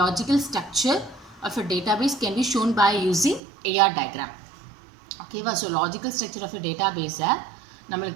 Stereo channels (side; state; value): left; drops out; at 3.4 s